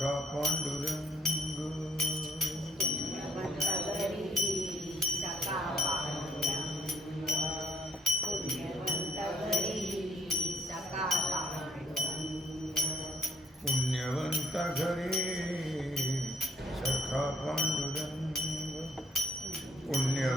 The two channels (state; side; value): normal; both; correlation 0.66